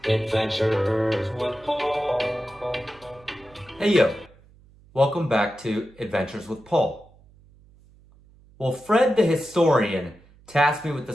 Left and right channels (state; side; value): noise; right; hum, 27 dB below the sound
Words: Adventures with Paul. Hey yo, welcome back to Adventures with Paul. Well, Fred the historian tasked me with